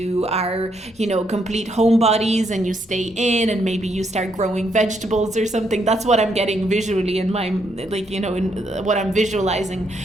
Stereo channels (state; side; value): normal; both; correlation 0.75